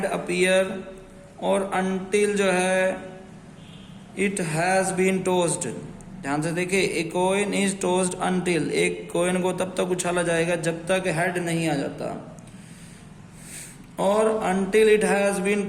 appear, और अनटिल जो है इट हैज बीन टॉस्ड। ध्यान से देखिए, ए कोइन इज टॉस्ड अनटिल, एक कोइन को तब तक उछाला जाएगा जब तक हेड नहीं आ जाता, और until it has been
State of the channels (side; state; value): both; identical; correlation 1.00